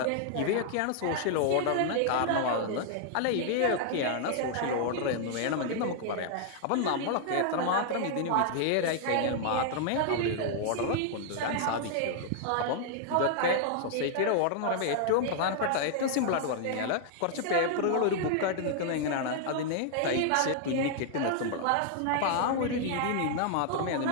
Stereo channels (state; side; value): different; both; correlation -0.01